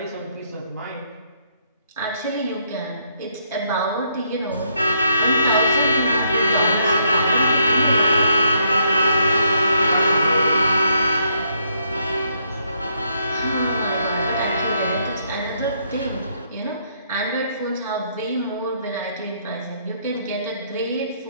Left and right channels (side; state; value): both; inverted; correlation -0.73